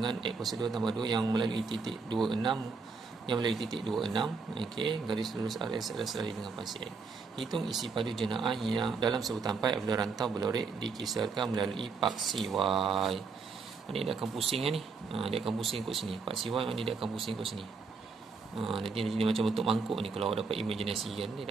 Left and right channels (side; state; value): left; quieter; 4.8 dB